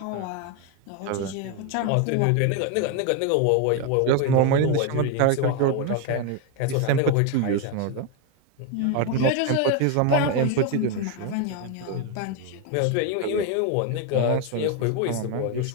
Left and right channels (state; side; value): different; both; correlation 0.01